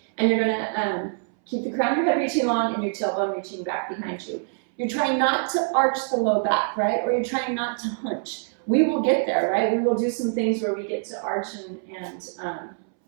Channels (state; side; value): silent; left; 62 dB below the other